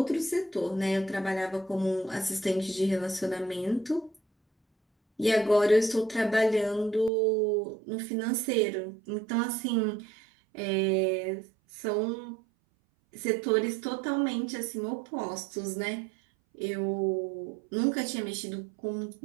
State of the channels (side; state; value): left; drops out; at 7.1 s